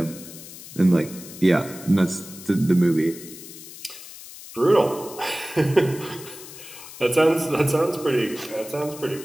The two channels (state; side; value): noise; left; hiss, 15 dB below the sound